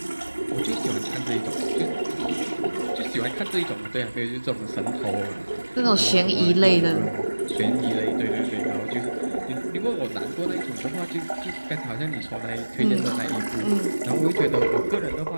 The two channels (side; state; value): both; inverted; correlation -1.00